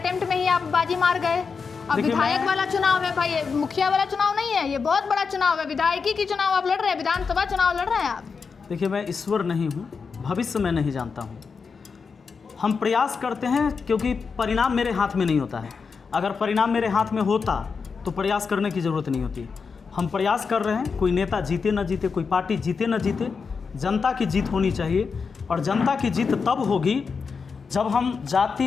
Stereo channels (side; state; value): right; quieter; 5.3 dB